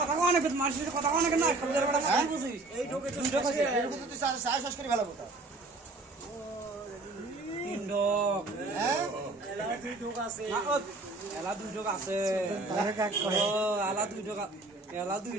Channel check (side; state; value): left; quieter; 3.2 dB